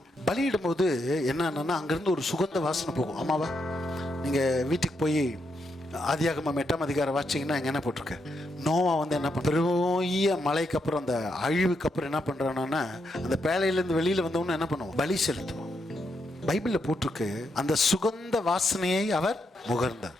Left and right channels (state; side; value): normal; both; correlation 0.80